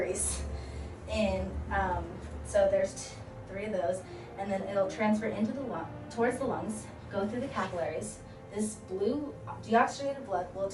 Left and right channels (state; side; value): identical; both; correlation 1.00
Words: And so there's 3 of those, and then it'll transfer into towards the lungs, go through the capillaries. This blue deoxygenated blood will